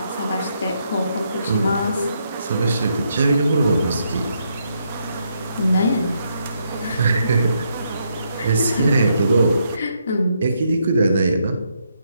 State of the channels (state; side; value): inverted; both; correlation -0.77